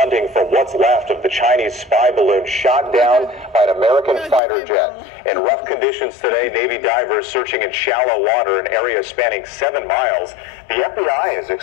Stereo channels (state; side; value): drops out; right; at 4.4 s